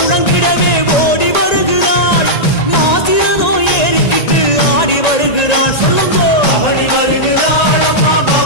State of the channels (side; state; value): right; late; 1.9 ms